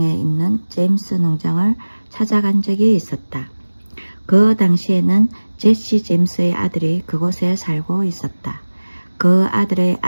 있는 제임스 농장을 찾아간 적이 있었다. 그 당시에는 제시 제임스의 아들이 그곳에 살고 있었다. 그 아들의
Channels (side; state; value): both; inverted; correlation -1.00